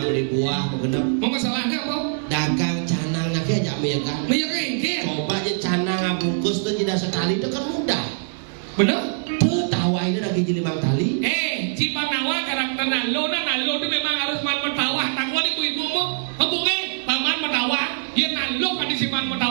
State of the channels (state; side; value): silent; left; digital silence